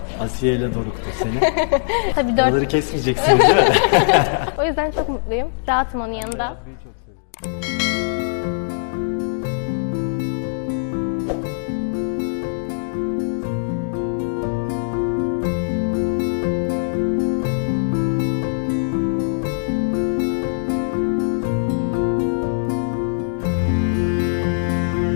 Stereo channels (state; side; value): silent; right; digital silence